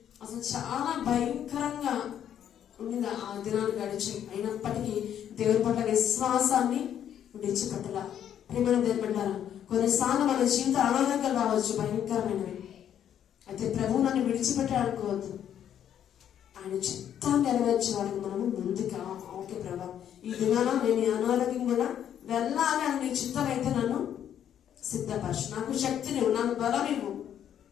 అసలు చాలా భయంకరంగా ఉండింది ఆ దినాలు గడిచి. అయినప్పటికీ దేవుడి పట్ల విశ్వాసాన్ని విడిచిపెట్టలా. ప్రేమ దేవుడు పెట్టారా, కొన్నిసార్లు మన జీవిత అనారోగ్యాలు రావచ్చు, భయంకరమైనవి. అయితే ప్రభువు నన్ను విడిచిపెట్టాలనుకోవద్దు. ఆయన చిత్తాన్ని నెరవేర్చే వారికి మనము ముందుగా ఓకే ప్రభా ఈ దినాన నేను ఈ అనారోగ్యం కూడా వెళ్ళాలి అని నీ చిత్తం అయితే నన్ను సిద్ధపరచు, నాకు శక్తిని నాకు బలం ఇవ్వు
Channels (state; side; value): quieter; right; 9.8 dB